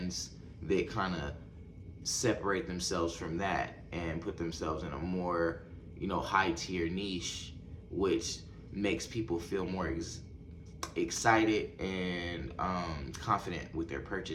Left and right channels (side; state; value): both; identical; correlation 1.00